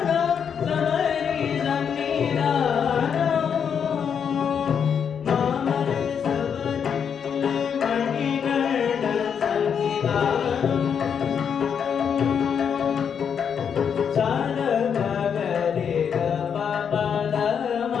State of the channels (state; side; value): quieter; right; 7.4 dB